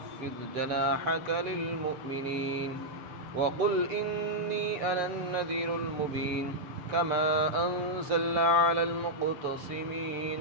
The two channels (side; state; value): left; late; 6.8 ms